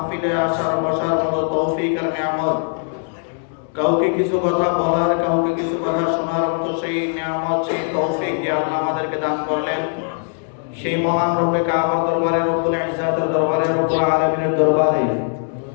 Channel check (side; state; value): right; silent; digital silence